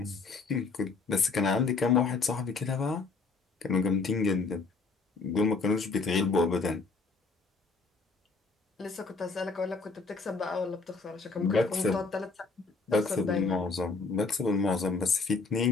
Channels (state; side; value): quieter; right; 4.2 dB